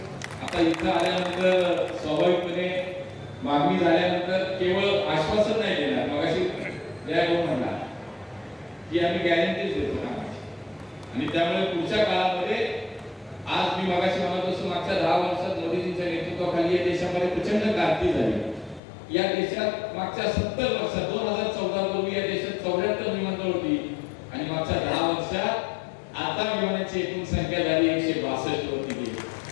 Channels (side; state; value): right; drops out; at 18.8 s